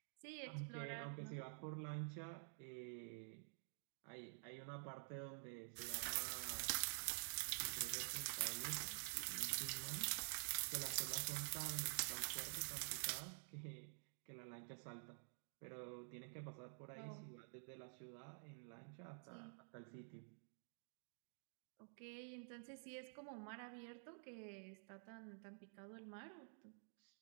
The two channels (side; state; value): left; silent; digital silence